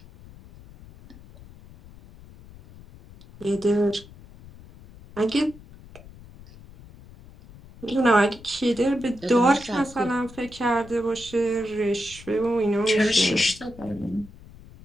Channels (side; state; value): left; noise; rumble, 20 dB below the sound